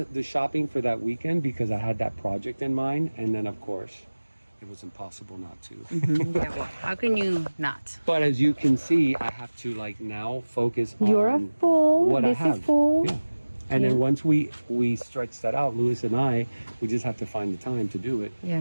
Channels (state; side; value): inverted; both; correlation -1.00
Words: shopping for that weekend because I had that project in mind. And then, of course, it was impossible not to. Yeah, well, how can you not? But as you can see, I have to like now focus on You're a fool. what This I have. is full. Yeah. And then once we stretch that out, Lewis and I, we just have to find the time to do it.